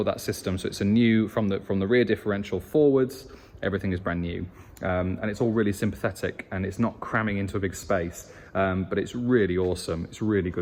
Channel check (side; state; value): both; identical; correlation 1.00